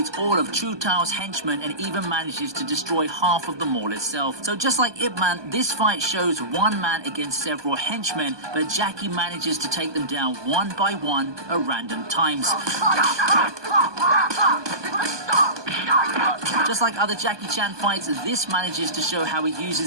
all of Chu Tao's henchmen and even manages to destroy half of the mall itself. So just like Ip Man, this fight shows one man against several henchmen, but Jackie manages to take them down one by one at random times. Just like other Jackie Chan fights, this manages to show how he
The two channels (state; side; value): late; left; 1.2 ms